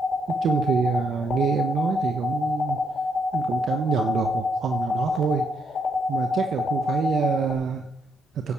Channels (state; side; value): normal; both; correlation 0.75